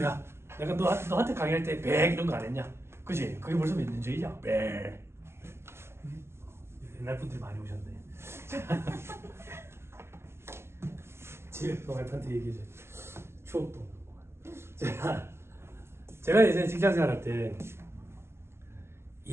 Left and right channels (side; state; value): left; late; 0.12 ms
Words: 내가 너한테 강의할 때 100 이런 거 안 했냐? 그지? 그게 벌써 몇 년 전이냐? 100. 옛날 분들이 많이 오셨네. 지금 와이프한테 얘기해줘. 추억도. 제가 예전에 직장 생활할 때